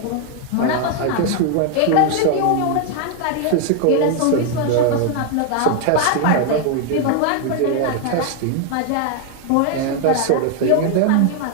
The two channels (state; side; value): different; both; correlation 0.00